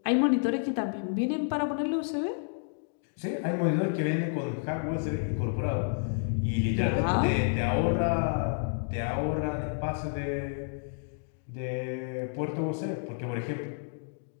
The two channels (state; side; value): silent; right; digital silence